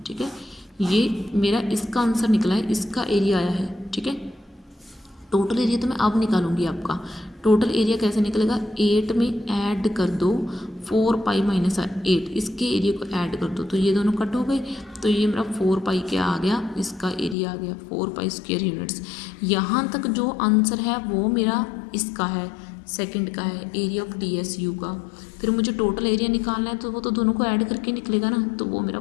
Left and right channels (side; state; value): right; drops out; at 17.4 s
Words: ठीक है, ये मेरा इसका आंसर निकला है, इसका एरिया आया है। ठीक है, टोटल एरिया तो मैं अब निकालूंगी आपका। टोटल एरिया कैसे निकलेगा, 8 में ऐड कर दो 4 पाई माइनस 8, इसके एरिया को ऐड कर दो, तो ये दोनों कट हो गए, तो ये मेरा 4 पाई क्या आ गया, इसका एरिया आ गया 4 पाई स्क्वायर यूनिट्स। यहाँ तक जो आंसर है वो मेरा इसका है, सेकंड का है, एरिया ऑफ DSU का। फिर मुझे टोटल एरिया निकालना है, तो वो तो दोनों को ऐड करके निकलेगा ना, तो वो मेरा